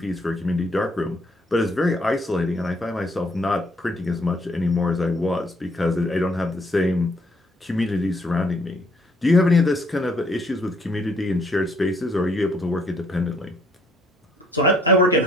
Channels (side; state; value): both; normal; correlation 0.66